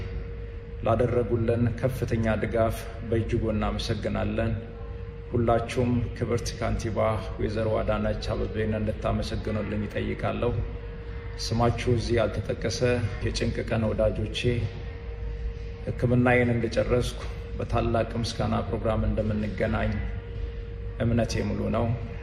ላደረጉልን ከፍተኛ ድጋፍ በእጅጉ እናመሰግናለን። ሁላችሁም ክብርት ካንቲባ ወይዘሮ አዳነች አቤቤን እንድታመሰግኑልኝ ይጠይቃለሁ። ስማችሁ እዚህ ያልተጠቀሰ የጭንቅ ቀን ወዳጆቼ ሕክምናዬን እንደጨረስኩ በታላቅ ምስጋና ፕሮግራም እንደምንገናኝ እምነቴ ሙሉ ነው።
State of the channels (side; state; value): both; identical; correlation 1.00